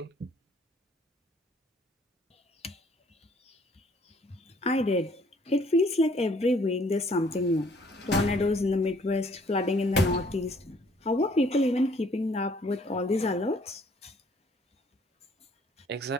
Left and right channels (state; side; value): normal; both; correlation 0.61